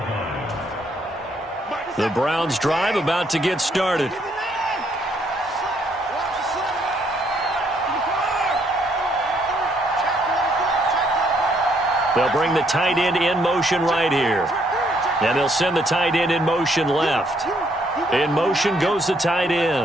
The Browns' drive about to get started. They'll bring the tight end in motion right here. And they'll send the tight end in motion left. In motion goes the tight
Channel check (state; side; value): normal; both; correlation 0.70